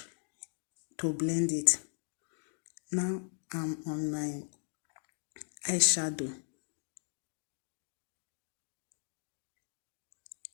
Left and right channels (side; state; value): right; silent; 53 dB below the other